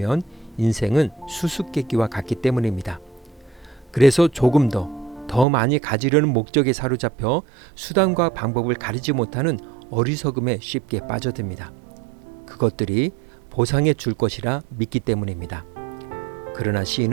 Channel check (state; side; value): drops out; left; at 5.5 s